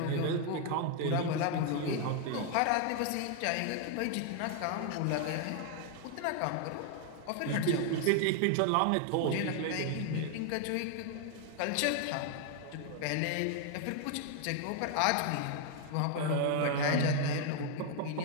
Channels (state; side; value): different; both; correlation 0.00